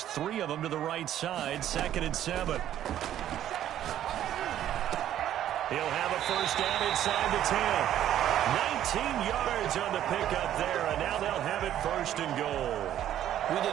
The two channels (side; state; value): left; quieter; 11.5 dB